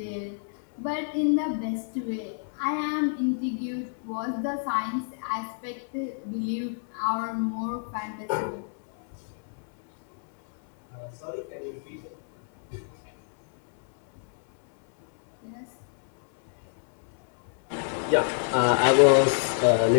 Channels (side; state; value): right; silent; 60 dB below the other